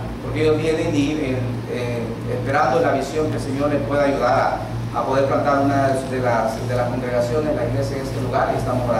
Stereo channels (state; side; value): identical; both; correlation 1.00